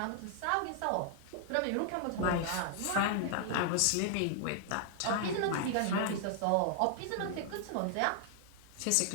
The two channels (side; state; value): both; different; correlation 0.00